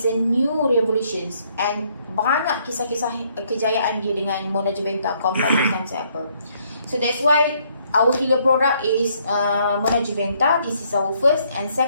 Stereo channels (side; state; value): both; inverted; correlation -0.68